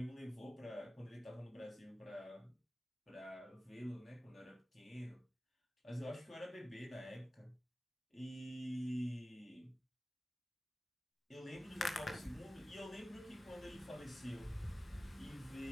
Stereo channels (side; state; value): both; normal; correlation 0.96